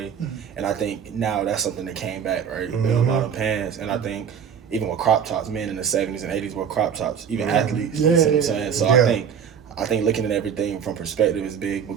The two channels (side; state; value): left; quieter; 7.7 dB